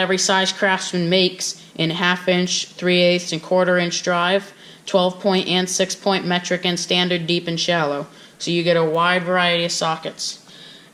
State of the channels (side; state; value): both; identical; correlation 1.00